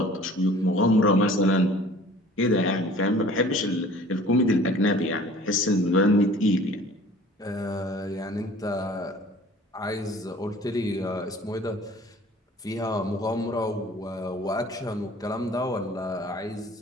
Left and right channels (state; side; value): normal; both; correlation 0.48